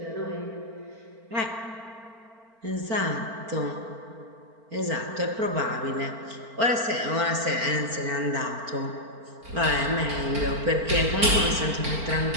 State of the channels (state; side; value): late; left; 4.4 ms